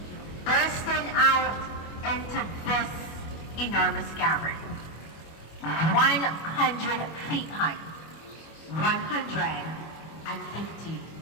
bursting out into this enormous cavern. 100 feet high, 150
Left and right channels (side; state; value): right; late; 25 ms